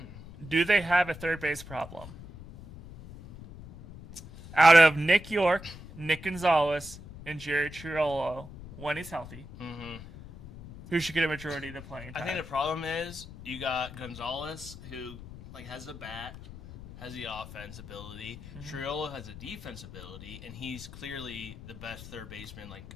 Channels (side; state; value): left; noise; rumble, 14 dB below the sound